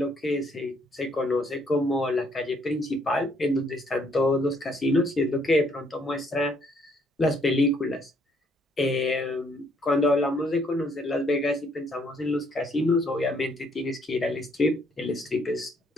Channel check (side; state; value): both; normal; correlation 0.67